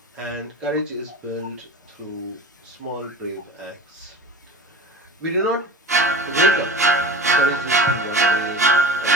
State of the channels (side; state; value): both; normal; correlation 0.33